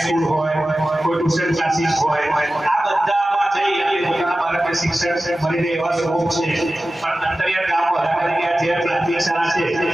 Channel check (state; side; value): normal; both; correlation 0.95